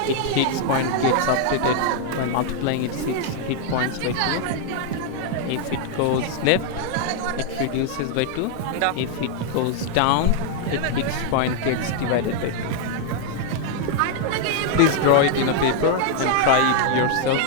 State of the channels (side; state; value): both; different; correlation 0.00